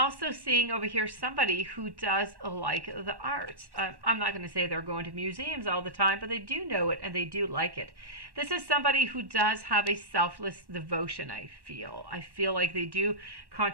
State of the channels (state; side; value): late; left; 1.1 ms